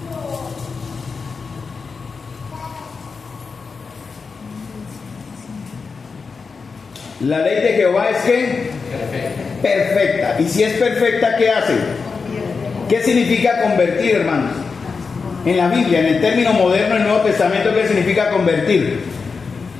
La ley de Jehová es ¿qué? Perfecta. Y si es perfecta, ¿qué hace? ¿Qué significa convertir, hermanos? En la Biblia, en el término moderno del Nuevo Testamento, ¿qué significa convertir?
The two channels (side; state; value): right; quieter; 4.9 dB